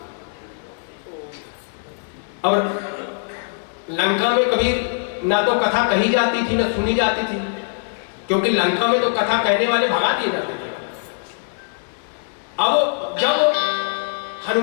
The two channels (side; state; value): right; silent; 62 dB below the other